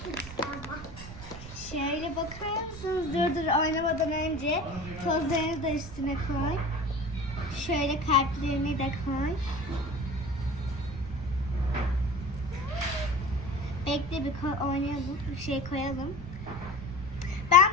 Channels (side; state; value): right; noise; rumble, 13 dB below the sound